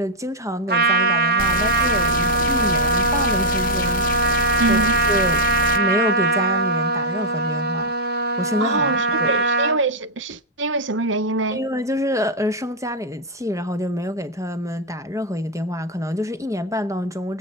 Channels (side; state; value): both; normal; correlation -0.03